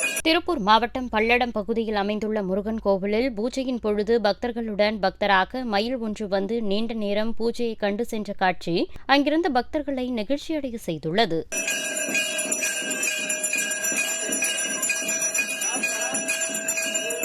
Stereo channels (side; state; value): both; identical; correlation 1.00